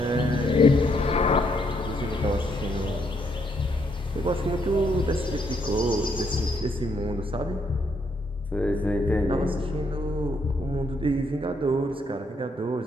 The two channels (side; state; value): both; normal; correlation 0.74